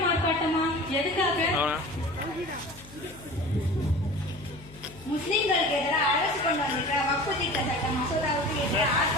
ஆர்ப்பாட்டமா? எதுக்காக? முஸ்லிம்களுக்கு எதிராக அரசு கொண்டு வந்திருக்கிற வக்ஃப் திட்ட சட்ட மசோதாவுக்கு எதிராக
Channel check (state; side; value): noise; left; hum, 20 dB below the sound